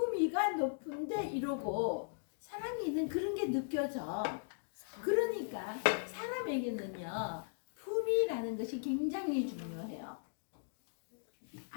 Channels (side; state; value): right; silent; digital silence